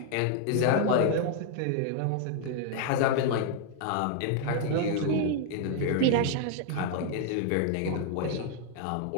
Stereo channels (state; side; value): different; both; correlation -0.01